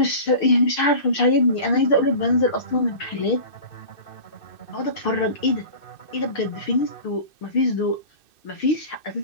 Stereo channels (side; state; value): right; late; 2.6 ms